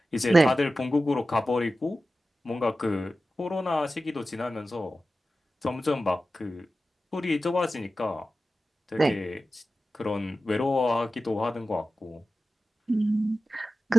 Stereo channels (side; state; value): both; normal; correlation 0.94